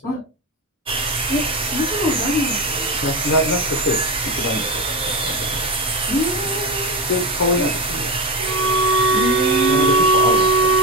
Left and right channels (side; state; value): both; normal; correlation 0.17